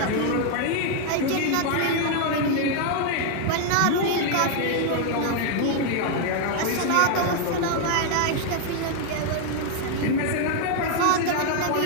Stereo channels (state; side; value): different; both; correlation 0.00